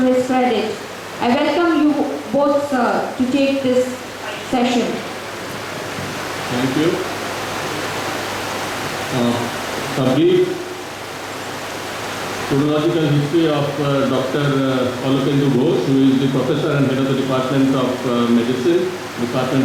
his credit. I welcome you both, sir, to take this session. Thank you. A brief chronological history of Dr. Alokendu Ghosh, who is the professor and head of the Department of Medicine,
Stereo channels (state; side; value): identical; both; correlation 1.00